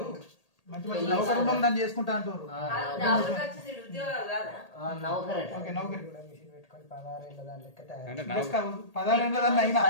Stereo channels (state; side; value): late; right; 1.8 ms